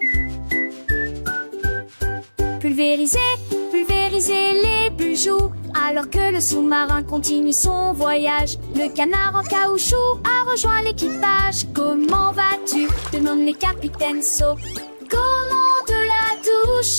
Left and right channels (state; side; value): inverted; both; correlation -1.00